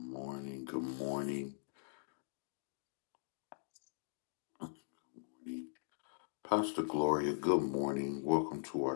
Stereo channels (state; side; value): silent; right; digital silence